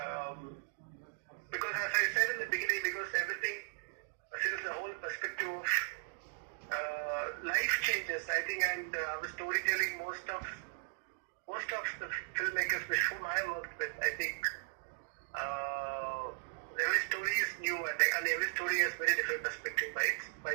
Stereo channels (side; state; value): left; quieter; 38.6 dB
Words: Because as I said in the beginning, because everything, since the whole perspective of life changes, I think, and our storytelling, most of the filmmakers with whom I worked with, I think every story is new, and every story has very different perspective by